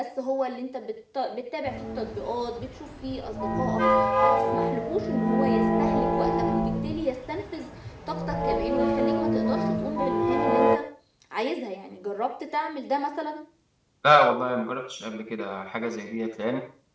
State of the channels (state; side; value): identical; both; correlation 1.00